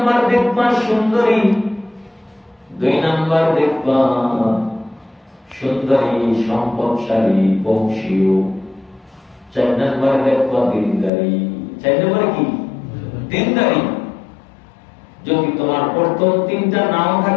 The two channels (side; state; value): right; drops out; at 11.1 s